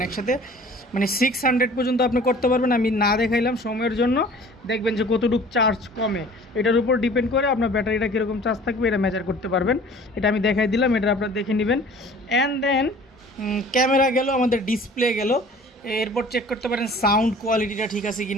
একসাথে, মানে 600 পর্যন্ত আপনি করতে পারবেন। আমি না দেখাইলাম সময়ের জন্য, দেখবেন যে কতটুকু চার্জ কমে, এটার উপর ডিপেন্ড করে আপনার ব্যাটারিটা কীরকম চার্জ থাকবে এটা মেজার করতে পারবেন। এটা আমি দেখাই দিলাম, এটা আপনারা দেখে নেবেন। অ্যান্ড দেন ক্যামেরা গেল, আমাদের ডিসপ্লে গেল, এরপর চেক করতে পারেন সাউন্ড কোয়ালিটিটা ঠিক আছে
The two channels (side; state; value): both; normal; correlation 0.48